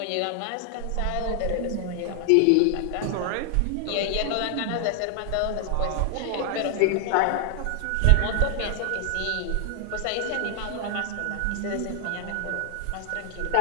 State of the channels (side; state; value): both; different; correlation 0.00